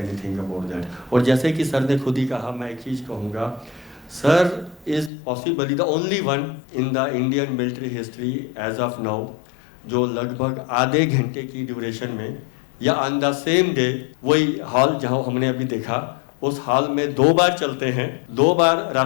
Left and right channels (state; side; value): drops out; right; at 5.1 s